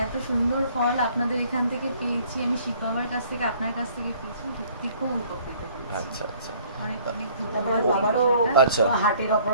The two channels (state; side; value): inverted; both; correlation -0.57